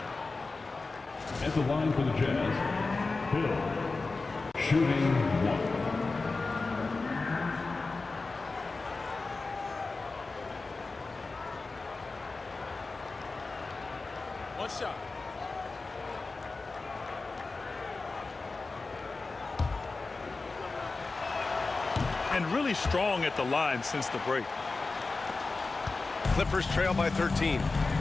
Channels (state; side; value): quieter; right; 3.8 dB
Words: At the line for the Jazz, Hill. Shooting 1. One shot. And really strong at the line since the break. Clippers trail by 13.